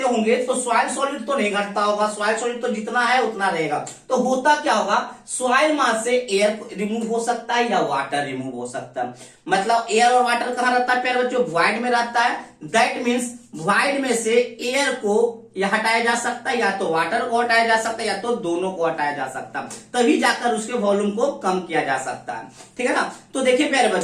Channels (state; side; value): identical; both; correlation 1.00